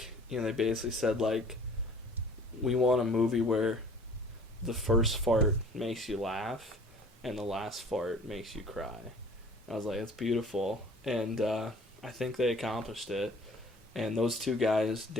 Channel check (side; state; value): both; normal; correlation 0.50